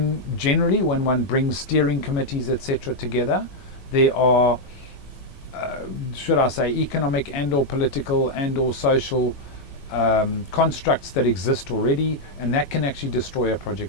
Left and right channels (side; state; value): right; late; 21 ms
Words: one brings steering committees, etc., together, there are, should I say, economic and or political and or social constructs that exist already, and that can actually destroy a